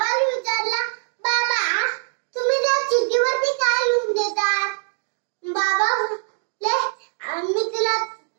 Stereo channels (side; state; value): left; silent; digital silence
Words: विचारला, बाबा तुम्ही त्या चिठ्ठीवरती काय लिहून देतात? बाबा